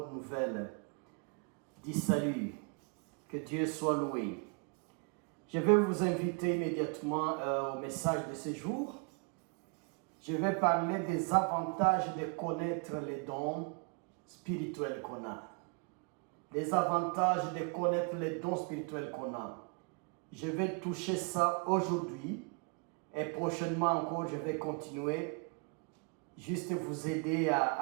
nouvelle du salut. Que Dieu soit loué. Je vais vous inviter immédiatement au message de ce jour. Je vais parler des avantages de connaître les dons spirituels qu'on a. Les avantages de connaître les dons spirituels qu'on a. Je vais toucher ça aujourd'hui et prochainement encore je vais continuer. Juste vous aider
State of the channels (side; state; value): left; quieter; 35.2 dB